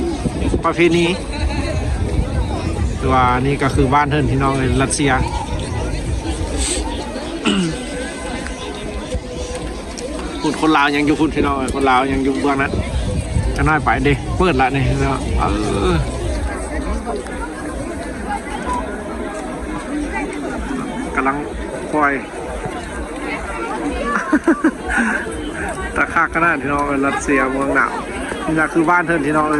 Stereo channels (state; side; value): identical; both; correlation 1.00